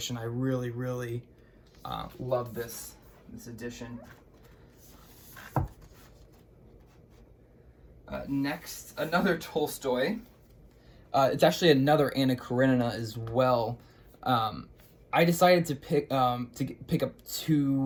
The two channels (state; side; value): identical; both; correlation 1.00